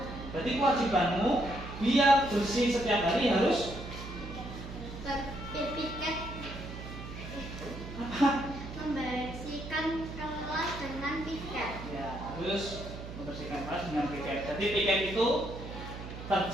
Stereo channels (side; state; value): right; noise; hum, 10 dB below the sound